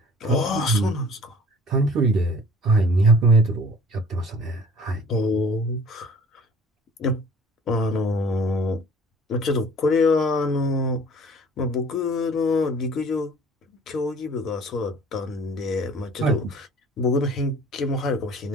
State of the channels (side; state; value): both; normal; correlation 0.49